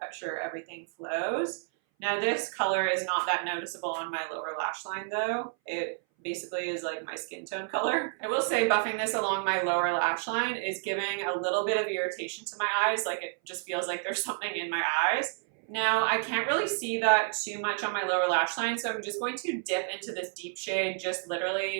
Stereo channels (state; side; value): silent; left; 58 dB below the other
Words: sure everything flows. Now this color is not that noticeable on my lower lash line though. It basically is like my skin tone color. I will say buffing this along my lower lash line is giving a little bit of irritation to my eyes. Like it just feels like there's something in my eyes. Now, I can't really see that too much on my lower lash line, so I'm just going to dip into this deep shade just